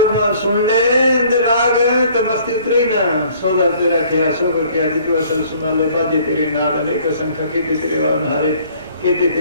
सुन ले राग तो मस्ती उतरे ना, सौदा तेरा क्या सोकर क्या जितवा सब सुना ले, बाजे तेरे नाद अनेक संख्या केते तेरे गावन हारे, केते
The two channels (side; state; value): both; inverted; correlation -0.57